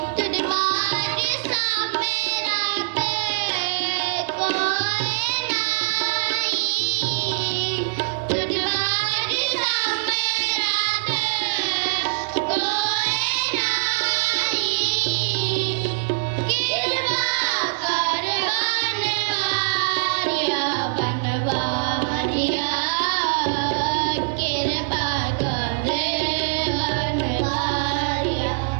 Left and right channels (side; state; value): left; silent; 63 dB below the other